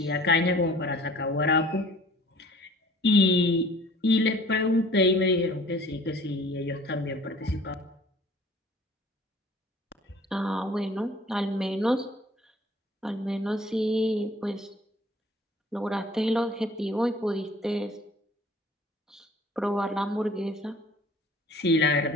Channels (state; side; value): normal; both; correlation 0.50